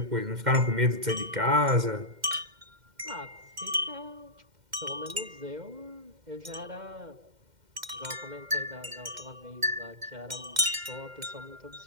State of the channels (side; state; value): left; late; 2.1 ms